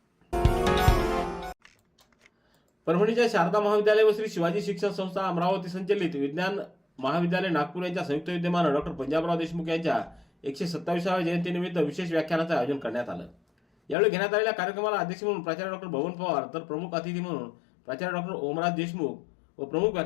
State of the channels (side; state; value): right; drops out; at 14.0 s